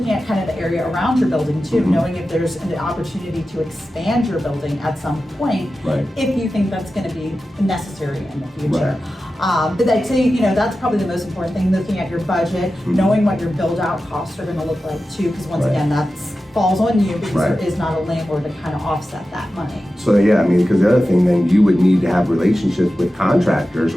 at kind of the area around your building too, Mhm. knowing if there's an opportunity to expand your building at some point, Right. if you think that's going to be necessary in the future. But I'd say, that's probably the most important thing, looking at your budget, knowing what your build out costs are going to look like too, because once Right. again, that falls on you because Right. there is not a landlord to kind of offset that money. So yeah, I mean, because the other thing, then you would need to have relationships with contractors,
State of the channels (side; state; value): both; normal; correlation 0.93